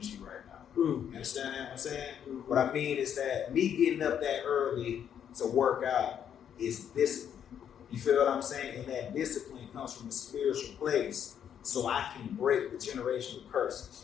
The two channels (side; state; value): right; quieter; 8.9 dB